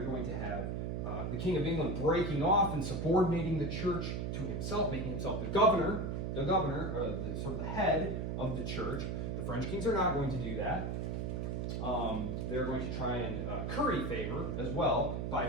going to have the King of England breaking off and subordinating the church to himself, making himself the governor, or sort of the head of the church. The French kings are not going to do that. They're going to try and curry favor as well by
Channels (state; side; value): noise; right; hum, 2 dB below the sound